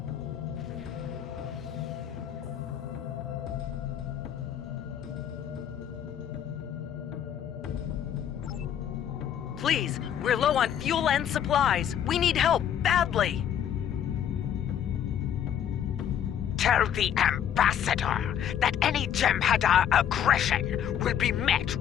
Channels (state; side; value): quieter; right; 9.5 dB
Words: Please, we're low on fuel and supplies. We need help, badly. Tell the Ambassador that any Jem'Hadar aggression will be met